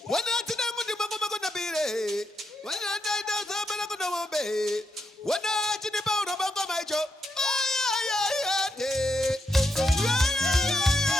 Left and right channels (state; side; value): normal; both; correlation 0.83